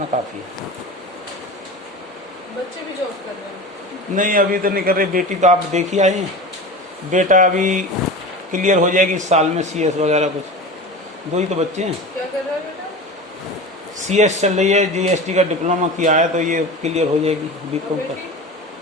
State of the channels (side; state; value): both; normal; correlation 0.31